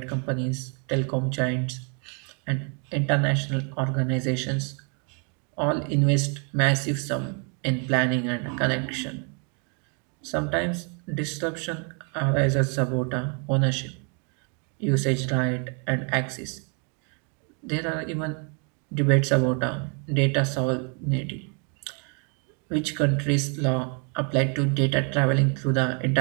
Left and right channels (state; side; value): quieter; left; 38.3 dB